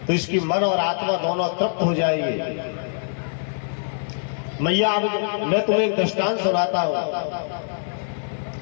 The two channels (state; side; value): silent; right; digital silence